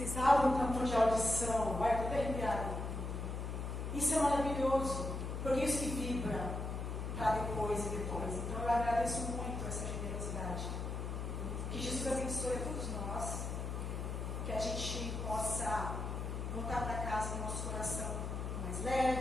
abrem o campo de audição. Vai, estou até arrepiada. Isso é maravilhoso, porque isso que vibra. para depois e depois. Então eu agradeço muito essa generosidade. Que Jesus abençoe a todos nós, que a gente possa voltar para casa com o nosso coração mais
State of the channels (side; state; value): left; noise; hum, 4 dB below the sound